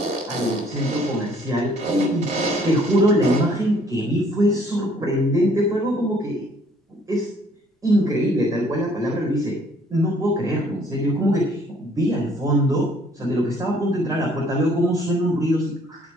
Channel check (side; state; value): both; normal; correlation 0.61